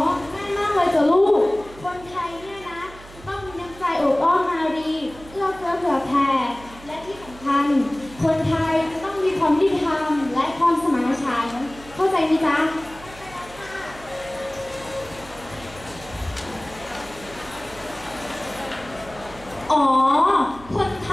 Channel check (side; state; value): right; noise; hum, 19 dB below the sound